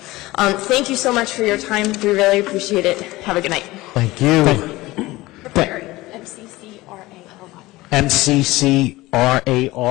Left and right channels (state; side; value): quieter; right; 19.3 dB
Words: you so much for your time. We really appreciate it. Have a good night. Thank you. MCCRARY.